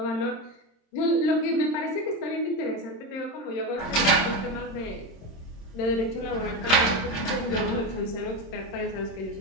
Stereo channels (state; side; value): late; right; 26 ms